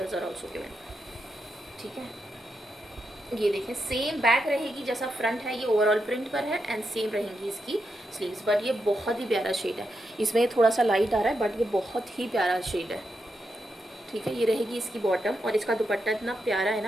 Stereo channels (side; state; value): both; normal; correlation 0.85